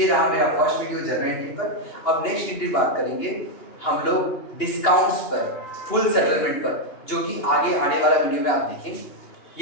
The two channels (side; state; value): right; late; 2.8 ms